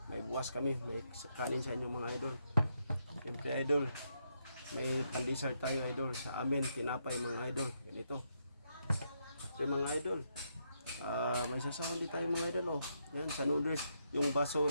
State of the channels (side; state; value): both; inverted; correlation -0.79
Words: may buwas kami, may kanin sa inyo mga idol. Siyempre idol, may pandesal tayo idol sa amin, tinapay mga idol. Ganito. Ito mga idol. May sasahon din tayo mga idol oh. Yan sa noodles, yung baso